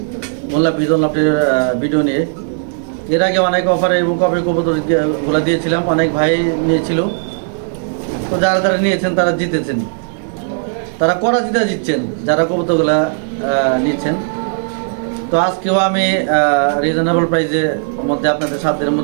মোল্লা বিজন লাভটির ভিডিও নিয়ে। এর আগে অনেক অফারে এবং কবে কবুতরগুলো দিয়েছিলাম, অনেক ভাই নিয়েছিল। তো যারা যারা নিয়েছেন তারা জিতেছেন, তারা করা জিতছেন যারা কবুতরগুলা নিচ্ছেন। তো আজকেও আমি রিজনেবল প্রাইসের মধ্যে আপনাদের সাধ্যের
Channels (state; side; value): silent; left; 60 dB below the other